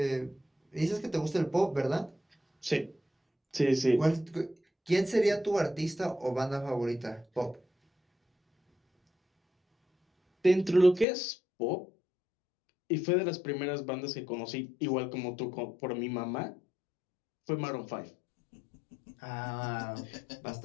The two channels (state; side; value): drops out; right; at 11.1 s